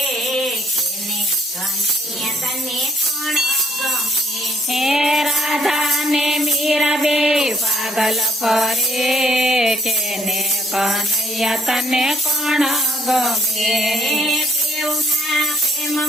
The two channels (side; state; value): both; normal; correlation 0.65